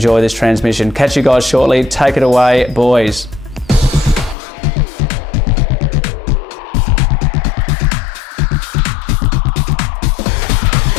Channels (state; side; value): drops out; right; at 4.4 s